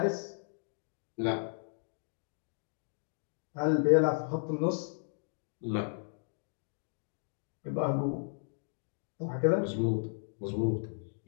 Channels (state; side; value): silent; right; digital silence